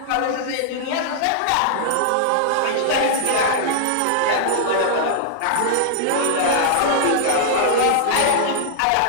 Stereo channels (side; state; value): both; different; correlation -0.01